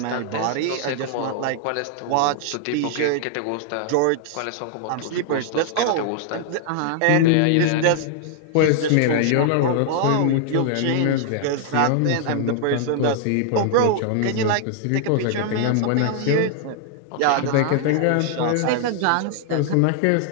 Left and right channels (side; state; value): both; different; correlation 0.00